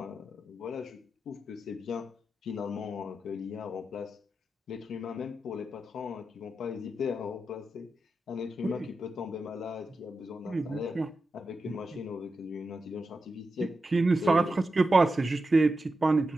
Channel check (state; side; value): normal; both; correlation 0.89